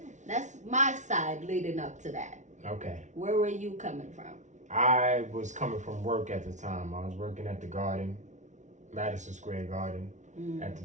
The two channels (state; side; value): late; left; 0.35 ms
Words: that's my side leading up to that. Okay. Where were you coming from? I was coming from work at the time. I was working at the Garden, Madison Square Garden at the